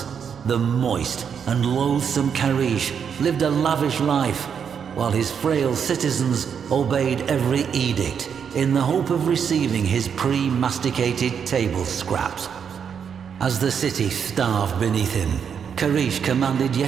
the moist and loathsome Karish lived a lavish life, while his frail citizens obeyed every edict in the hope of receiving his pre-masticated table scraps. As the city starved beneath him, Karish commanded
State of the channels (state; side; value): quieter; left; 7.3 dB